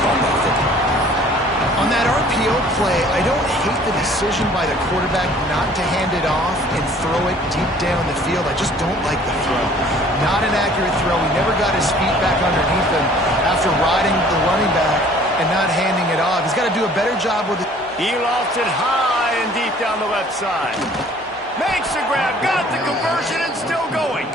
caught that football. On that RPO play, I don't hate the decision by the quarterback not to hand it off and throw it deep down the field. I just don't like the throw. Not an accurate throw. He never got his feet back underneath him after riding the running back and not handing it off. He's got to do a better job with it. He lost it high and deep down the left side. Makes the grab, got the conversion, and still going.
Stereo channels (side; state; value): both; normal; correlation 0.54